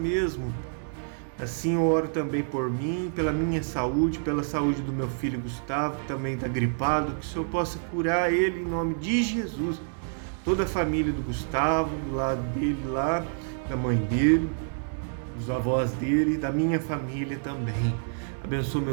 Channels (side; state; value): left; silent; digital silence